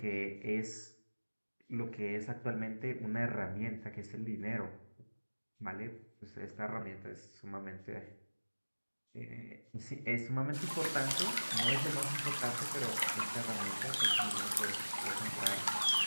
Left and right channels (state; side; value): inverted; both; correlation -1.00